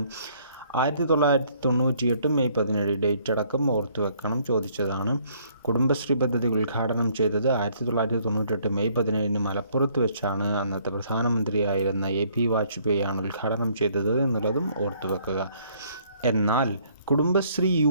1998 മെയ് 17. ഡേറ്റ് അടക്കം ഓർത്തു വെക്കണം, ചോദിച്ചതാണ്. കുടുംബശ്രീ പദ്ധതി ഉദ്ഘാടനം ചെയ്തത് 1998 മെയ് 17 മലപ്പുറത്ത് വെച്ചാണ്. അന്നത്തെ പ്രധാനമന്ത്രിയായിരുന്ന AP വാജ്പേയി ആണ് ഉദ്ഘാടനം ചെയ്തത് എന്നുള്ളതും ഓർത്തു വെക്കുക. എന്നാൽ കുടുംബശ്രീ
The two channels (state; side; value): inverted; both; correlation -0.64